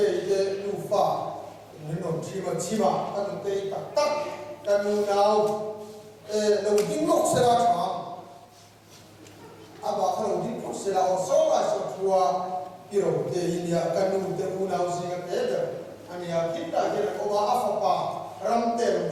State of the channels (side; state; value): both; identical; correlation 1.00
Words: đủ pha nên nó chỉ mà các cái tắc tắc các nào đầu tiên lúc sẽ ra chọn à bà cái đầu tiên lúc sẽ ra ở sau là sẽ thua cái đầu tiên India các nụ tên nào gì cái đấy anh ya kita cái là ông áp phá ram tên đầu